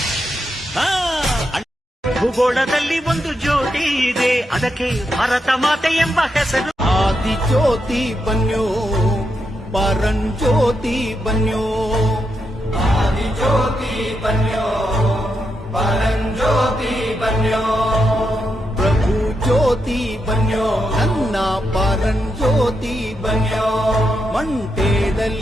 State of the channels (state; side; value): normal; both; correlation 0.83